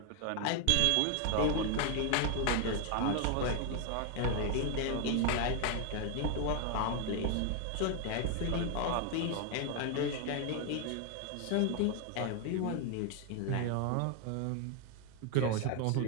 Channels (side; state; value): both; different; correlation 0.01